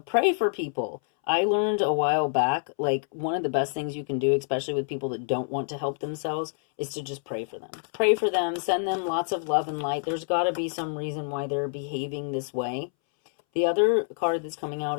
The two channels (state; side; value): silent; right; 60 dB below the other